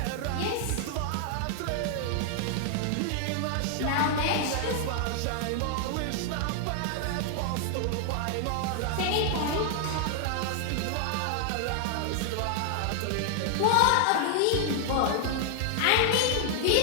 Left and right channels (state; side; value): different; both; correlation 0.00